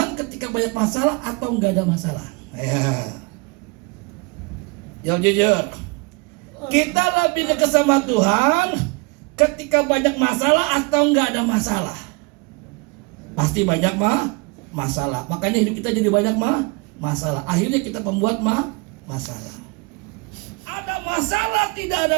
ketika banyak masalah atau nggak ada masalah? Ya, jawab jujur. Kita lebih dekat sama Tuhan ketika banyak masalah atau nggak ada masalah? Pasti banyak masalah. Makanya hidup kita jadi banyak masalah. Akhirnya kita pembuat masalah. Ada masalah, tidak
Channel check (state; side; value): quieter; left; 28.7 dB